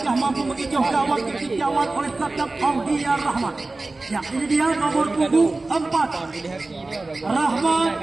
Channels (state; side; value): quieter; left; 3.2 dB